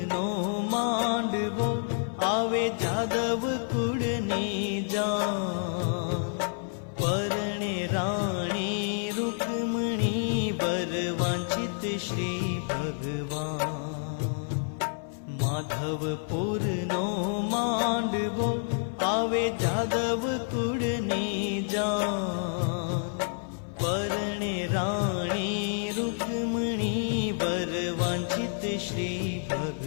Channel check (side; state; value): right; silent; 55 dB below the other